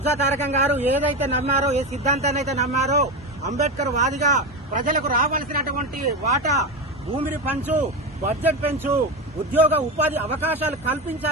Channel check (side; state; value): both; normal; correlation 0.18